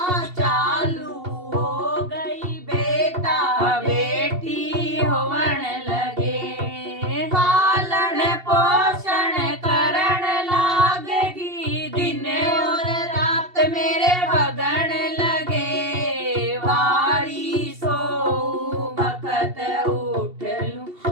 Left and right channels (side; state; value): left; late; 2.7 ms